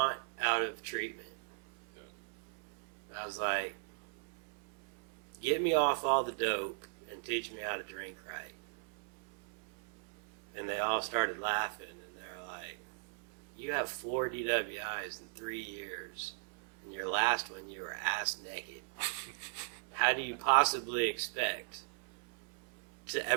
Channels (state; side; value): silent; left; 52 dB below the other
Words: out of treatment? I was like, get me off all the dope and teach me how to drink right. And they all started laughing, and they're like, you have 4 DWIs in 3 years, and your last one you were ass naked. How do you possibly expect to